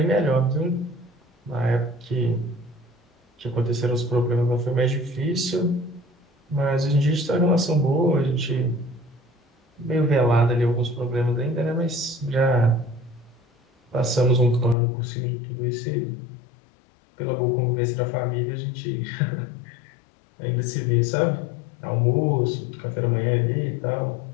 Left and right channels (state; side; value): drops out; right; at 14.8 s